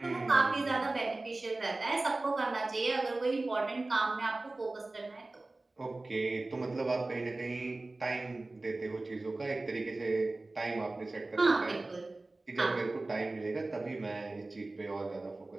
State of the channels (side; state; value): left; quieter; 3.0 dB